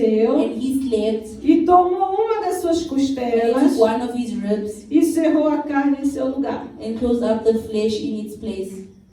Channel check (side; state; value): both; identical; correlation 1.00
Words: and he slept, e tomou uma das suas and he costelas, took one of his ribs, e cerrou a carne em seu lugar. and closed up the flesh in its place.